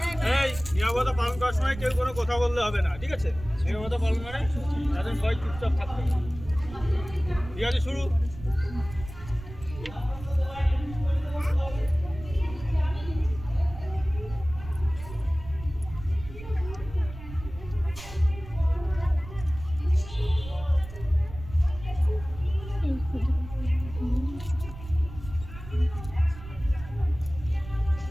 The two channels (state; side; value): noise; right; rumble, 13 dB below the sound